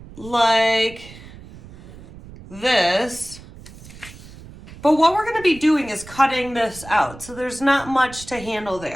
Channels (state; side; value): noise; right; rumble, 18 dB below the sound